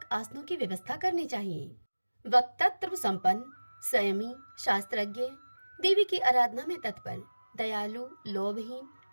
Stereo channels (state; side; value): inverted; both; correlation -1.00